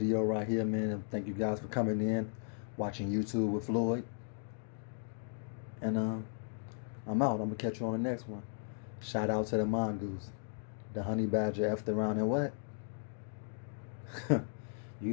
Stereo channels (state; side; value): silent; right; digital silence